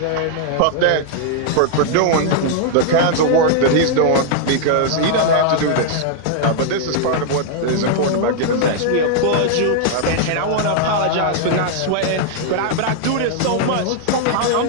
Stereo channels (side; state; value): both; different; correlation -0.01